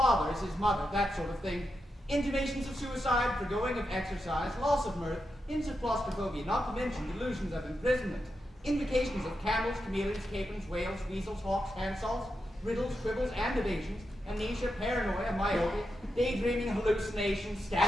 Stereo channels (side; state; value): both; normal; correlation 0.87